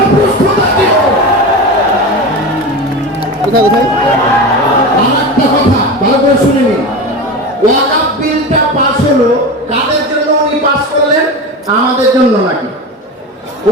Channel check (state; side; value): normal; both; correlation 0.25